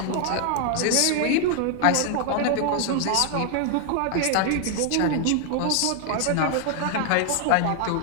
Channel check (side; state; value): both; different; correlation 0.00